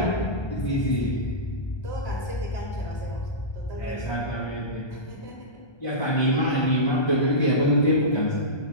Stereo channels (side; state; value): right; late; 1.3 ms